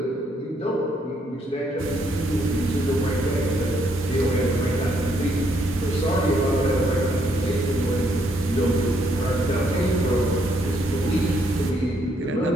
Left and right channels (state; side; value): normal; both; correlation 0.72